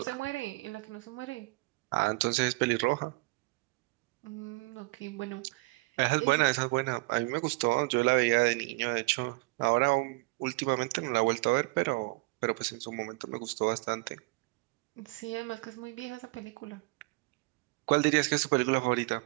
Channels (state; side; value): quieter; left; 27.3 dB